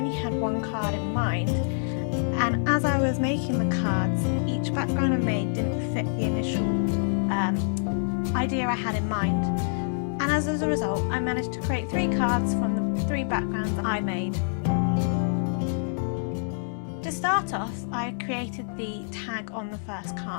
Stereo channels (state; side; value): silent; right; digital silence